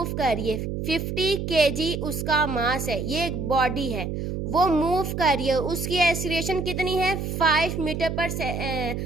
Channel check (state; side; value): noise; right; hum, 4 dB below the sound